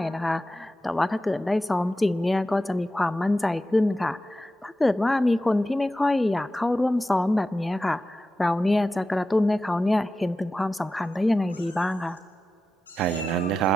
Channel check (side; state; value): both; normal; correlation 0.93